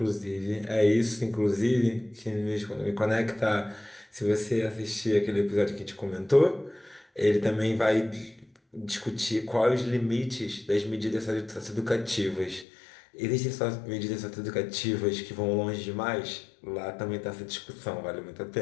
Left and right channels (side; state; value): right; drops out; at 12.7 s